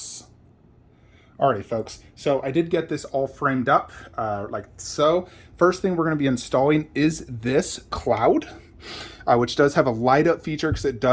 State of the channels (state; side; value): identical; both; correlation 1.00